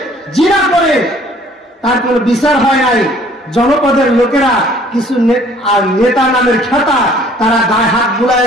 জিনা করে, তার কোনো বিচার হয় নাই। জনপদের লোকেরা কিছু নেতা নামের খেতা, তারা গায়ে হাত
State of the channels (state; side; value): normal; both; correlation 0.56